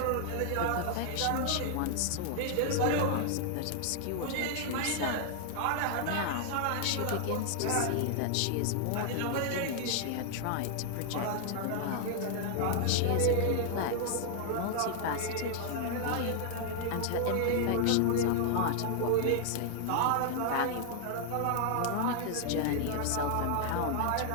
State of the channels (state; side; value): different; both; correlation 0.00